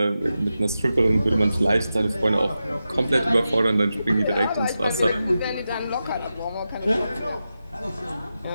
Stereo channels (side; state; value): both; inverted; correlation -0.91